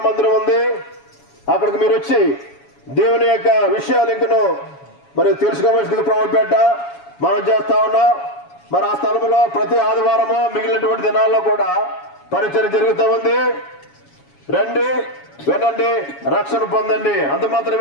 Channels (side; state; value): right; late; 7.2 ms